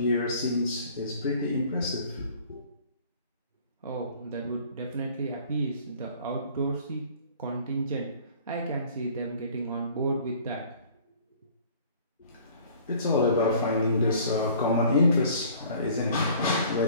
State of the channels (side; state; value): both; inverted; correlation -0.51